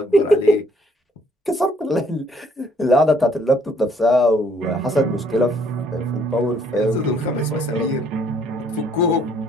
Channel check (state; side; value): normal; both; correlation 0.64